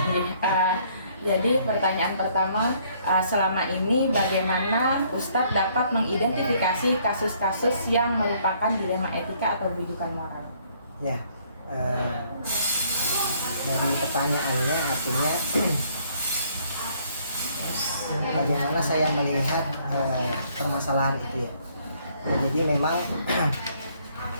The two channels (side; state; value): both; inverted; correlation -0.65